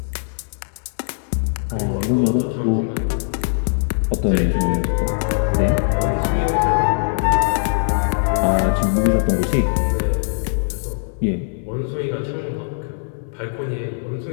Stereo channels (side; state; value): right; silent; 65 dB below the other